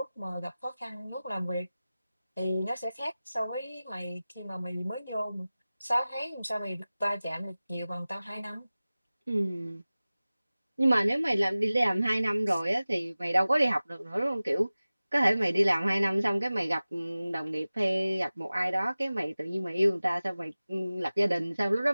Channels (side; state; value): both; inverted; correlation -0.97